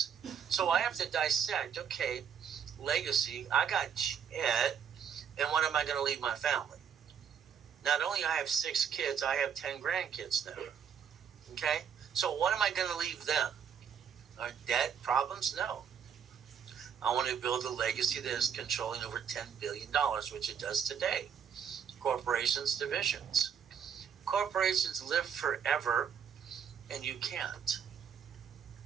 So I have to dissect, okay, legacy, I got Ed, and what am I going to leave my family? Not only I have 6 kids, I have 10 grandkids now. Okay? So what am I going to leave them? Are debt problems? No. I want to build a legacy that is controlling over $10 billion, which it does today. Corporations, divisions. Corporations live forever, and you can't.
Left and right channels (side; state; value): left; quieter; 7.7 dB